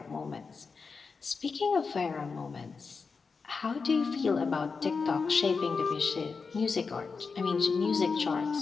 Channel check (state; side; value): quieter; right; 4.9 dB